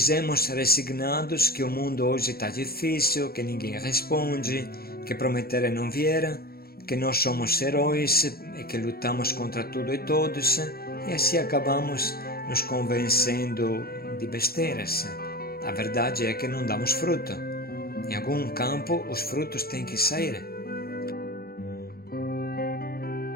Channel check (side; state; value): right; late; 0.44 ms